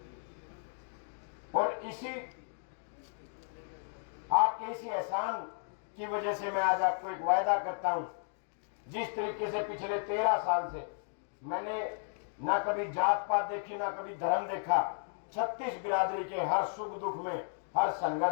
और आपके इसी एहसान की वजह से मैं आज आपको एक वायदा करता हूं। जिस तरीके से पिछले 13 साल से मैंने ना कभी जात पात देखी, ना कभी धर्म देखा, 36 बिरादरी के हर सुख दुख में, हर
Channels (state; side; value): silent; right; 55 dB below the other